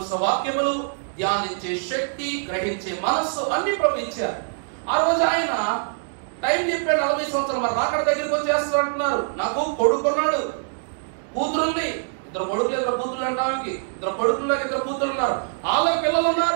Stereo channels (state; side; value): silent; left; digital silence